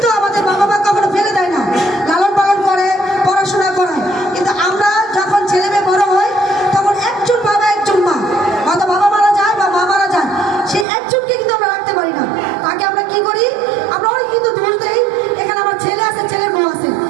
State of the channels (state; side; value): drops out; left; at 10.9 s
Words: আমাদের বাবা মা কখনো ফেলে দেয় না, লালন পালন করে, পড়াশোনা করায়। কিন্তু আমরা যখন ছেলে মেয়ে বড় হয় তখন একজন বাবা একজন মা, হয়তো বাবা মারা যায় বা মা মারা যায়, সেই একজনকে কিন্তু আমরা রাখতে পারি না। তাকে আমরা কি করি, আমরা অনেক কিন্তু দোষ দেই। এখানে আমার ছেলে আছে, ছেলের বউ আছে,